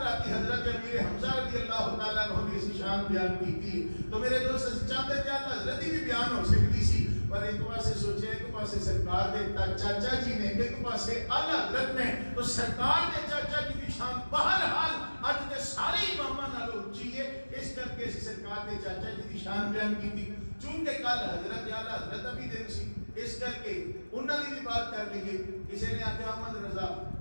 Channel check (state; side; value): inverted; both; correlation -1.00